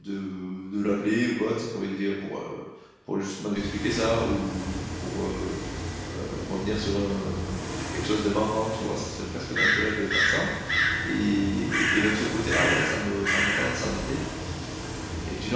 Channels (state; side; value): identical; both; correlation 1.00